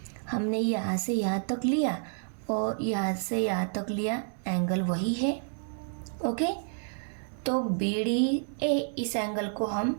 हमने यहाँ से यहाँ तक लिया और यहाँ से यहाँ तक लिया, एंगल वही है। ओके, तो BDA इस एंगल को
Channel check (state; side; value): silent; left; digital silence